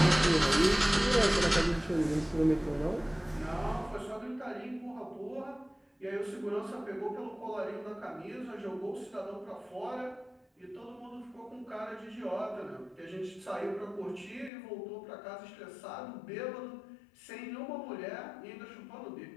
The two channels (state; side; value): drops out; right; at 14.5 s